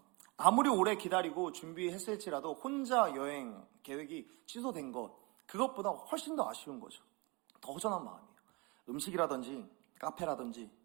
아무리 오래 기다리고 준비했을지라도 혼자 여행 계획이 취소된 것, 그것보다 훨씬 더 아쉬운 거죠. 더 허전한 마음이에요. 음식이라든지 카페라든지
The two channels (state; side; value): quieter; left; 27.4 dB